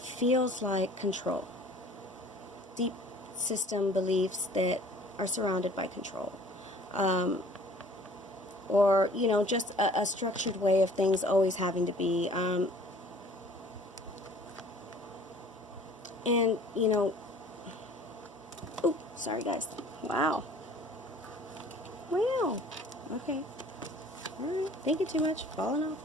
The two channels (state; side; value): normal; both; correlation 0.51